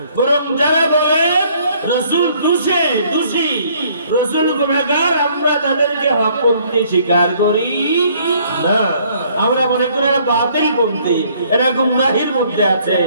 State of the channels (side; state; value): both; inverted; correlation -0.62